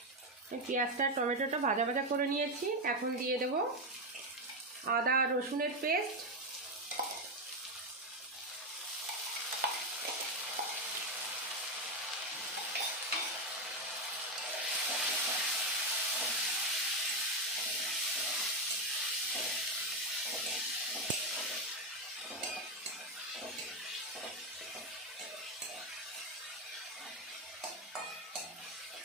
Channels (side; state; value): both; normal; correlation 0.08